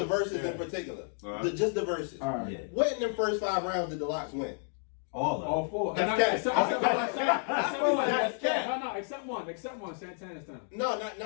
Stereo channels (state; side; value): silent; right; 57 dB below the other